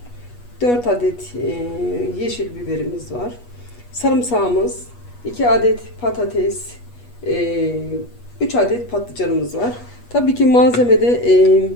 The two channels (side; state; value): right; late; 8.3 ms